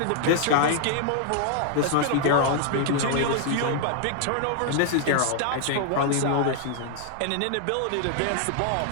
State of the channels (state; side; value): different; both; correlation 0.00